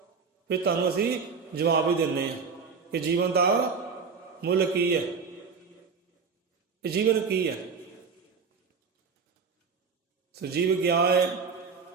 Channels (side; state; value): left; quieter; 5.4 dB